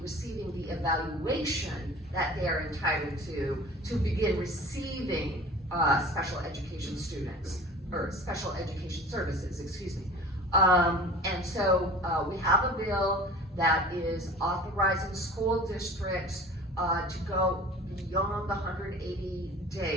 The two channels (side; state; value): both; normal; correlation 0.41